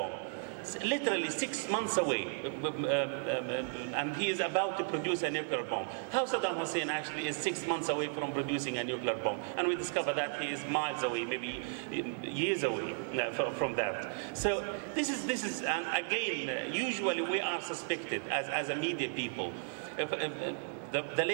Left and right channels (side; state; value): left; silent; 55 dB below the other